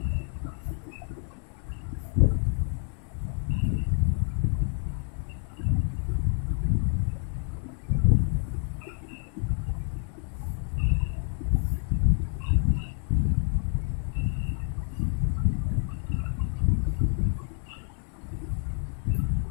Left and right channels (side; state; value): right; silent; 59 dB below the other